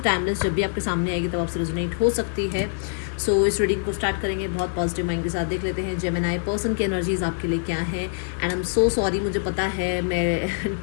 टाइमलेस, जब भी आपके सामने आएगी तब आपसे रेजोनेट हो सकती है। सो इस रीडिंग को स्टार्ट करेंगे बहुत पॉजिटिव माइंड के साथ। देख लेते हैं जेमिनी पर्सन की एनर्जीज आपके लिए क्या है। And I am so sorry, मुझे पता है मैं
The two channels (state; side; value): silent; right; 57 dB below the other